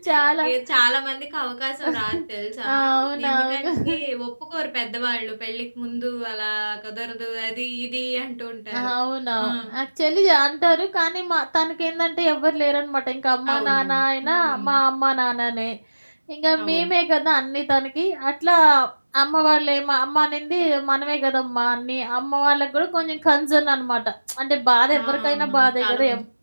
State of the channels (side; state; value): both; inverted; correlation -1.00